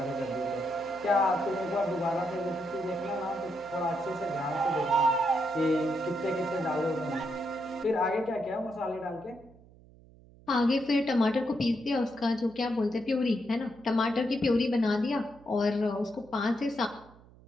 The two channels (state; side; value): noise; right; hum, 24 dB below the sound